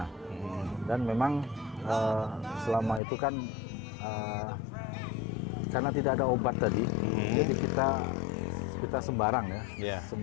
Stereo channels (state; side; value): drops out; right; at 3.0 s